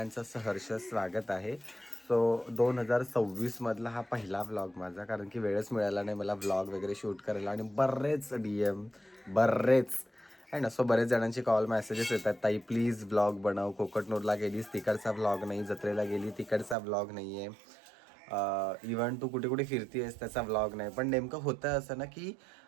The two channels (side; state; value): left; drops out; at 16.8 s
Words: सहर्ष स्वागत आहे. सो 2026 मधला हा पहिला व्लॉग माझा, कारण की वेळच मिळाला नाही मला व्लॉग वगैरे शूट करायला आणि बरेच DM बरेच आहे ना. सो बरेच जणांची कॉल मेसेजेस येतात, ताई प्लीज व्लॉग बनव, कोकटनूरला गेलीस तिकडचा व्लॉग नाही, जत्रेला गेली तिकडचा व्लॉग नाही आहे, इव्हन तू कुठे कुठे फिरतीयस त्याचा व्लॉग नाही. पण नेमकं होतं असं ना की